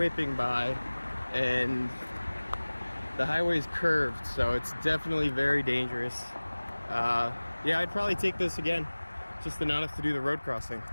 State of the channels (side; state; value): both; inverted; correlation -1.00